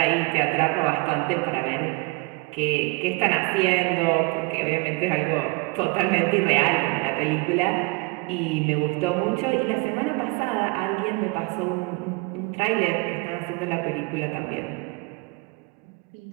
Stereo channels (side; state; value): left; quieter; 27.9 dB